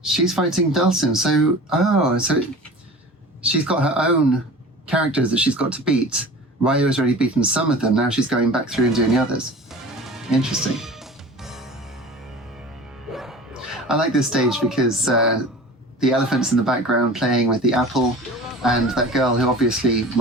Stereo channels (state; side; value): normal; both; correlation 0.38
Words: she's fighting Bison, so, so she's got her own characters that she's got to beat. Ryu has already beaten some of them, now she's going back through and doing the others. Interesting. I like this stage because the elephant's in the background playing with the apple, and that girl who obviously